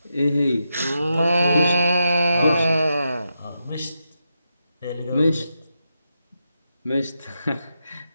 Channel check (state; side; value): inverted; both; correlation -0.86